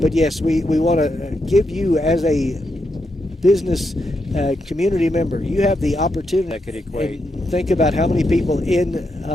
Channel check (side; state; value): both; normal; correlation 0.83